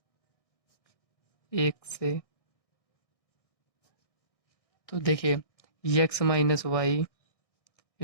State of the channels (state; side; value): late; right; 1.6 ms